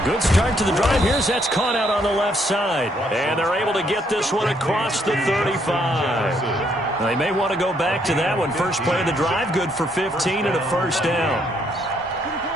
good start to the drive. Here's that's caught out on the left side. And they're able to get this one across the 35. They may want to go back to that one. First play of the drive, good for 15 and a first down.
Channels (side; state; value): both; normal; correlation 0.71